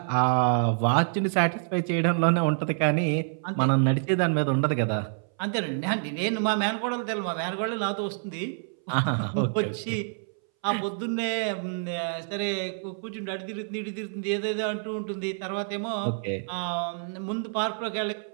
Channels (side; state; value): left; silent; 60 dB below the other